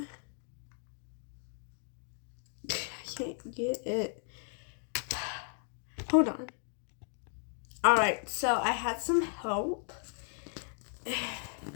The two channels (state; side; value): silent; right; 54 dB below the other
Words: can't get it. Hold on. Alright, so I had some help.